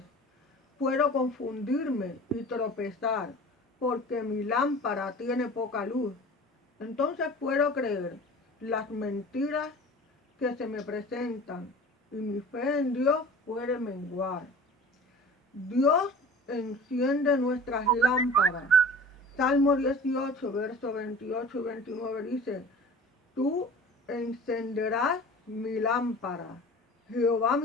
Puedo confundirme y tropezar porque mi lámpara tiene poca luz. Entonces puedo creer las mentiras que se me presentan y mi fe en Dios puede menguar. Dios enciende nuestras lámparas. Salmo 18, versos 28 y 29 dice: tú encenderás mi lámpara. Jehová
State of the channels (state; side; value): normal; both; correlation 0.41